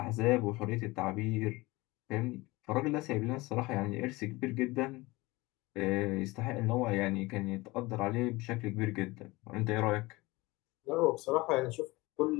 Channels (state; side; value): quieter; right; 21.8 dB